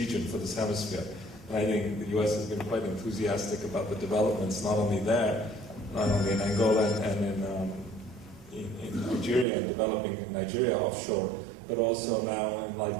for this hemisphere. And I think the U.S. has been quite enthusiastic about the developments, not only there, not only in Angola and in Nigeria, and developing Nigeria offshore, but also now in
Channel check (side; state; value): left; drops out; at 9.5 s